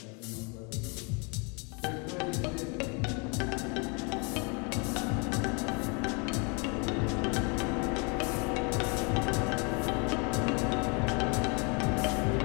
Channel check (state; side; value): quieter; right; 33.2 dB